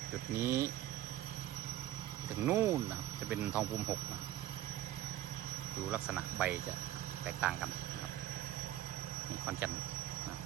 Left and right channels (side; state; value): left; quieter; 13.0 dB